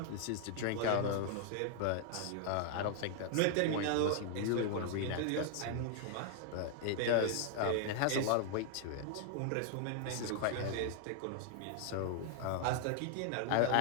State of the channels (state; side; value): different; both; correlation 0.00